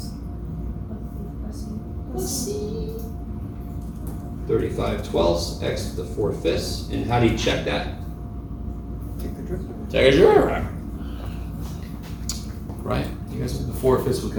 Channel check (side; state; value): both; identical; correlation 1.00